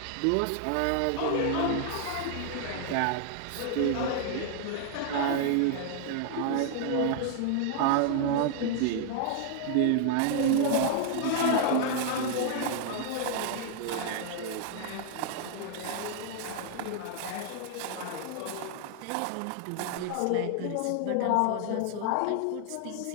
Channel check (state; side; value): different; both; correlation 0.00